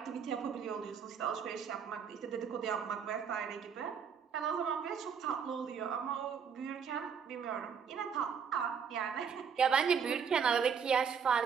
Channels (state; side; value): quieter; left; 6.8 dB